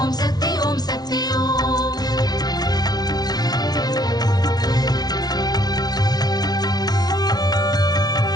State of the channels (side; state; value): right; late; 0.19 ms